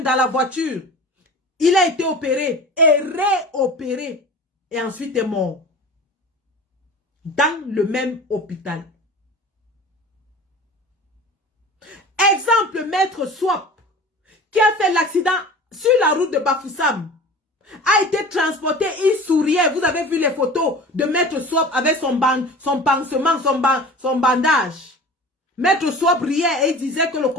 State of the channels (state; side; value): normal; both; correlation 0.38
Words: dans la voiture. Il a été opéré et réopéré et ensuite est mort. Dans le même hôpital. Exemple, Maître Swap, qui a fait l'accident sur la route de Bafoussam, a été transporté, il souriait. Vous avez vu les photos de Maître Swap avec son pansement, son bandage. Maître Swap riait et disait que le